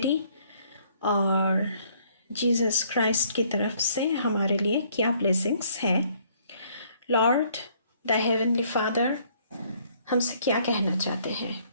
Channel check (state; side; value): inverted; both; correlation -0.64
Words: और जीसस क्राइस्ट की तरफ से हमारे लिए क्या ब्लेसिंग्स हैं। लॉर्ड द हेवनली फादर हमसे क्या कहना चाहते हैं।